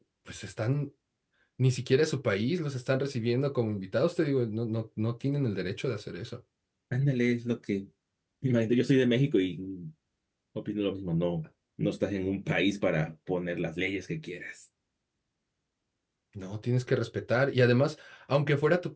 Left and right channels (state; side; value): identical; both; correlation 1.00